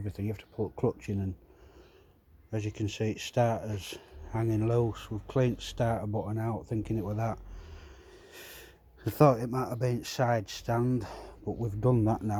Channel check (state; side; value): identical; both; correlation 1.00